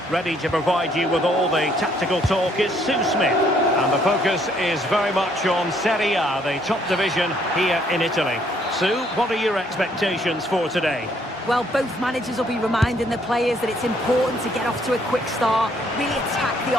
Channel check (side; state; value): both; normal; correlation 0.67